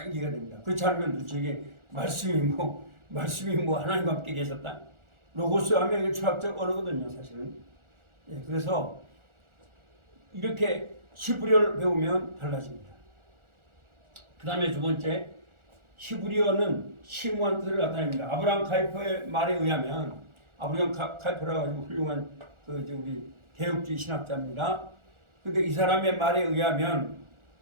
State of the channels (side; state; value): left; late; 1.4 ms